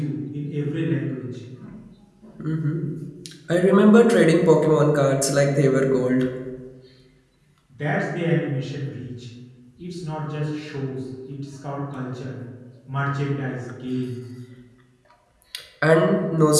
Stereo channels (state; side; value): identical; both; correlation 1.00